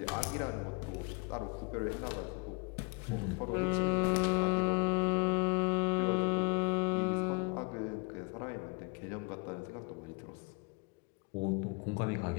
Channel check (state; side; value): quieter; right; 31.4 dB